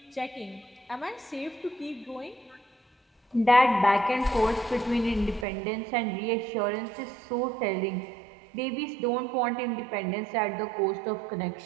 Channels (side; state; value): left; drops out; at 5.5 s